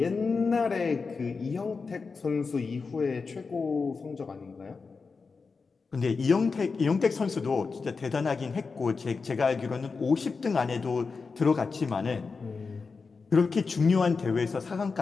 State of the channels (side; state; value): right; quieter; 4.7 dB